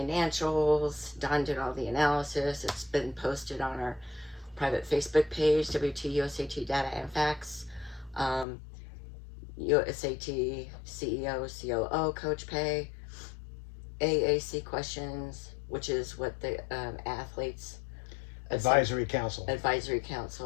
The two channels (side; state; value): right; drops out; at 8.5 s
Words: Dawn did all the analysis. It's been posted on our private Facebook page, AAU-USAT Data and Facts. USAT CEO, COO Coach Pay. AAC questions, which is what the athletes Advisory Council.